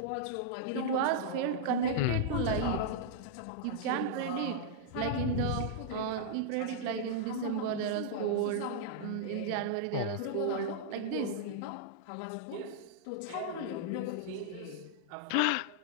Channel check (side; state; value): both; different; correlation -0.02